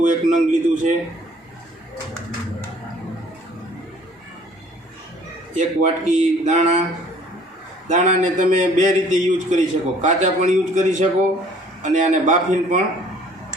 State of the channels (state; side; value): normal; both; correlation 0.56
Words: एक नंग लीधुं छे। एक वाटकी दाणा। दाणा ने तमे बे रीते यूज करी शको, काचा पण यूज करी शको अने आने बाफीने पण